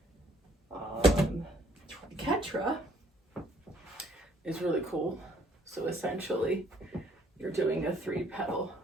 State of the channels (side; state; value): both; normal; correlation 0.63